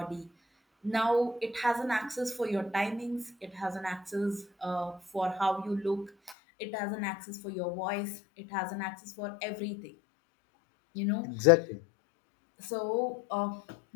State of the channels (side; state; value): right; drops out; at 6.4 s